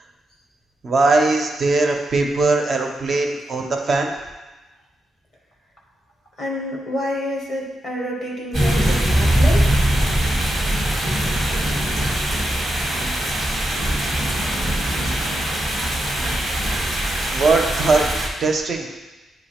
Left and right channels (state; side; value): normal; both; correlation 0.86